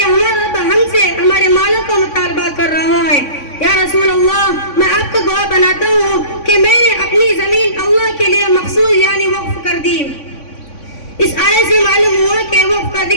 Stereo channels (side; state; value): right; late; 3.5 ms